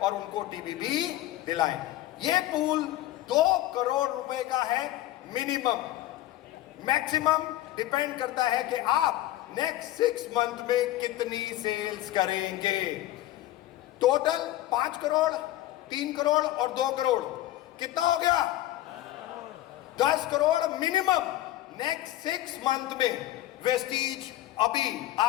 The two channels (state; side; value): quieter; right; 15.0 dB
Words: उनको TBB दिलाएं। ये पूल 2 करोड़ रुपए का है मिनिमम, मैक्सिमम डिपेंड करता है कि आप नेक्स्ट 6 मंथ में कितनी सेल्स करेंगे। टोटल 5 करोड़, 3 करोड़ और 2 करोड़, कितना हो गया? 10 करोड़ मिनिमम नेक्स्ट 6 मंथ में। वेस्टीज अभी